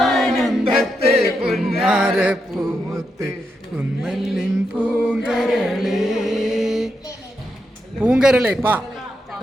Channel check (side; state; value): both; normal; correlation 0.83